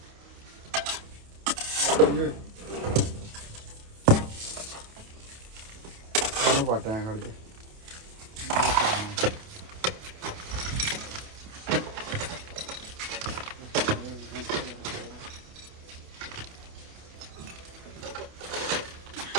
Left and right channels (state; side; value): late; left; 28 ms